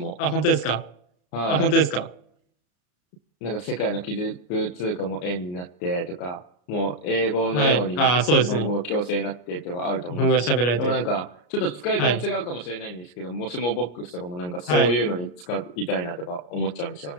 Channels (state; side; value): late; right; 34 ms